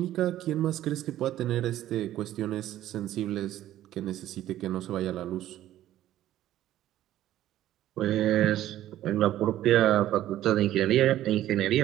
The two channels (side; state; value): left; quieter; 13.2 dB